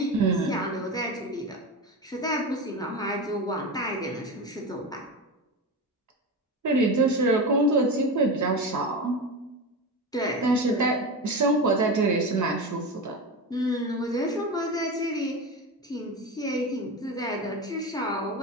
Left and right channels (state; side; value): normal; both; correlation 0.22